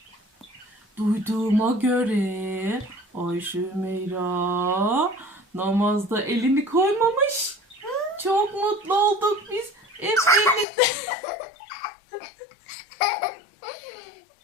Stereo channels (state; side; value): drops out; right; at 10.7 s